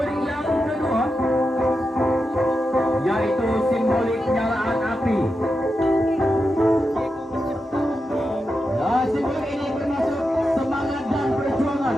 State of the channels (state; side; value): normal; both; correlation 0.88